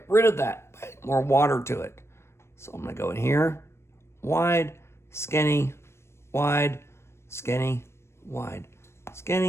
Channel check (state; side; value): late; right; 0.13 ms